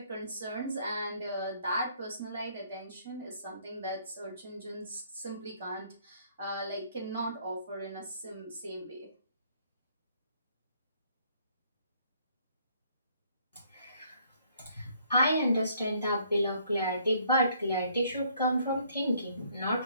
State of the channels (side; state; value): both; inverted; correlation -0.65